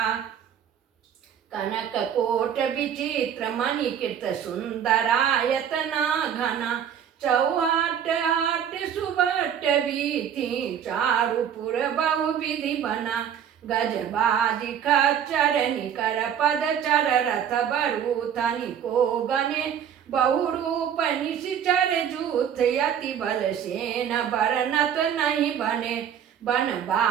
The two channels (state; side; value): quieter; left; 8.8 dB